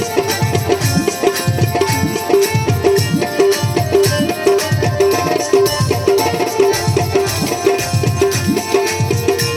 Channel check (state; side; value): identical; both; correlation 1.00